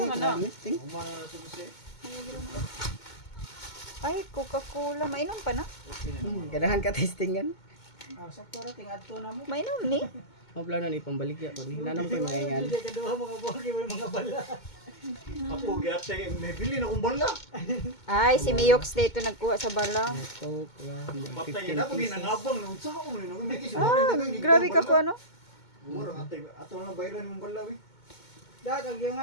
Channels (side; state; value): right; late; 2.2 ms